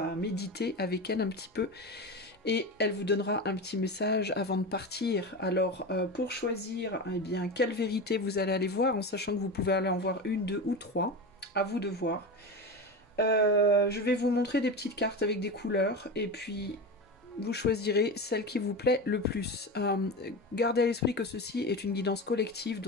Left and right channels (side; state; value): both; normal; correlation 0.24